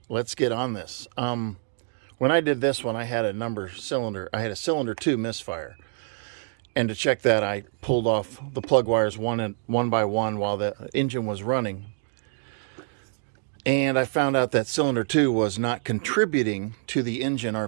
let's get on this. When I did this one, I had a cylinder 2 misfire. And to check that, I pulled off the plug wires one by one while the engine was running. And I found out that cylinder 2 was not contributing to the engine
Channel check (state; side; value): silent; left; digital silence